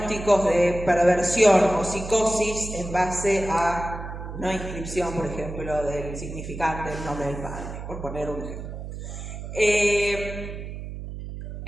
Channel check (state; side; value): noise; right; hum, 9 dB below the sound